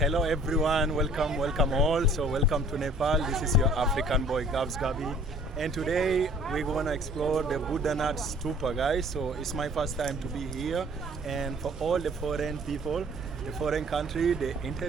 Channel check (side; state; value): both; normal; correlation 0.53